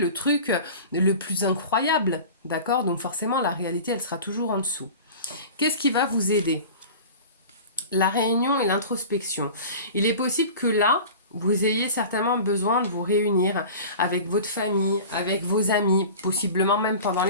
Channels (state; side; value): inverted; both; correlation -0.37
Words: truc le plus incroyable, d'accord? Donc forcément, la réalité, elle sera toujours en dessous. Qu'est-ce qui va vous aider? La réunion et l'introspection. Il est possible que là, vous ayez certainement besoin de vous réunir avec votre famille, avec vos amis, possiblement même pendant